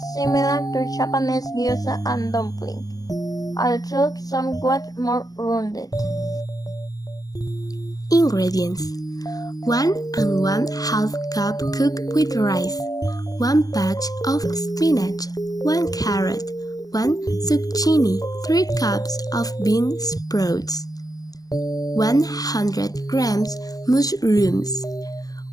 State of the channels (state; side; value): late; right; 0.18 ms